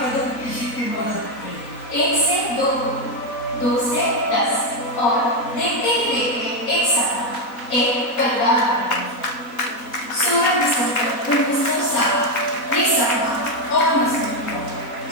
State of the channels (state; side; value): late; right; 4.2 ms